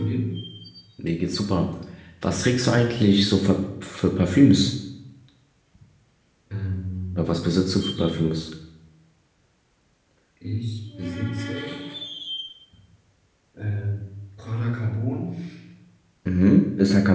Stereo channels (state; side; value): identical; both; correlation 1.00